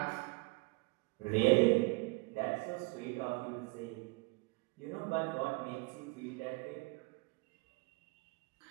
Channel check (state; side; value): quieter; left; 25.3 dB